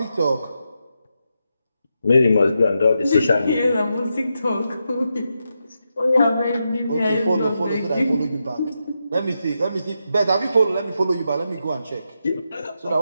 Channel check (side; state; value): both; inverted; correlation -0.86